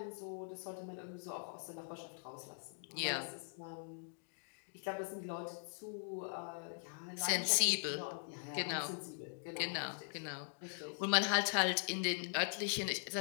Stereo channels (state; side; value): silent; right; digital silence